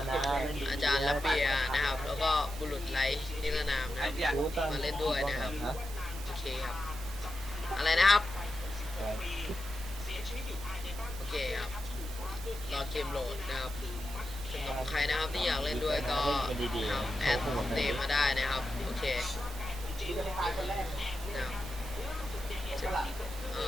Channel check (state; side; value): normal; both; correlation 0.90